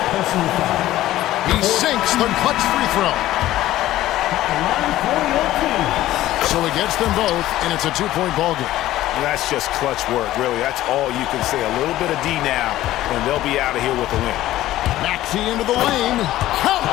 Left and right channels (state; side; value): quieter; right; 14.8 dB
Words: He sinks the clutch free throw. So he gets them both, and it's a 2-point ball game. That's just clutch work, really. That's all you can say. A little bit of D now, and they'll be out of here with a win. Maxey into the lane. Count!